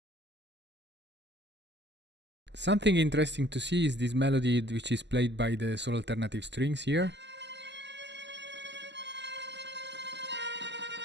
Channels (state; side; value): late; left; 0.51 ms